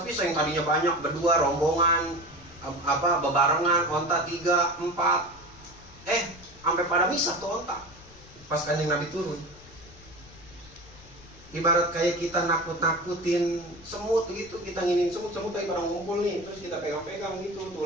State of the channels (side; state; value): left; noise; rumble, 22 dB below the sound